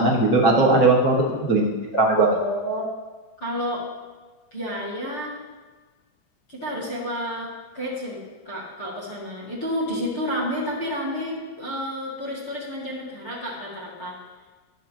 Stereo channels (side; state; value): right; late; 6.7 ms